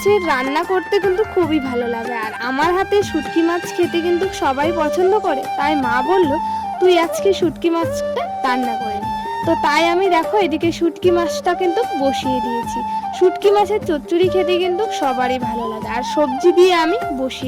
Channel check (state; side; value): identical; both; correlation 1.00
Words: রান্না করতে কিন্তু খুবই ভালো লাগে, আর আমার হাতে শুটকি মাছ খেতে কিন্তু সবাই পছন্দ করে, তাই মা বলল তুই আজকে শুটকি মাছটা রান্না করে নি। তো তাই আমি দেখো এদিকে শুটকি মাছটা কিন্তু বসিয়ে দিয়েছি। শুটকি মাছের চচ্চড়ি খেতে কিন্তু সবারই ভালো লাগে, আর সবজি দিয়ে আমি